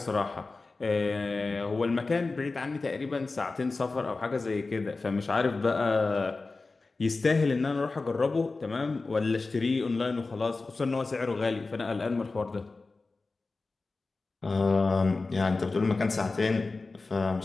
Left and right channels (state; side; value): quieter; right; 3.7 dB